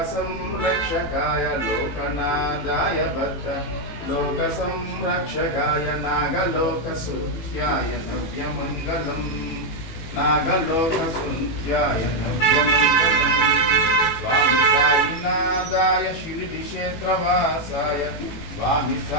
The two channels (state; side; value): late; right; 18 ms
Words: लोकनाथाय भक्त लोकसंरक्षकाय नागलोकसूत्याय नव्यमङ्गलम् नागलोकसूत्याय नव्यमङ्गलम् स्वामी साईनाथाय श्रीक्षेत्रवासाय स्वामी